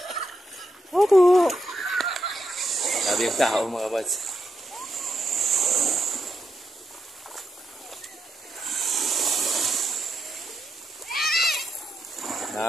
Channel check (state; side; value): normal; both; correlation 0.83